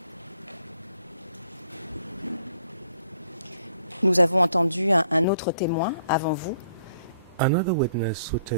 Nous avons entendu un autre témoin avant vous. Another witness who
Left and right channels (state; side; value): inverted; both; correlation -0.65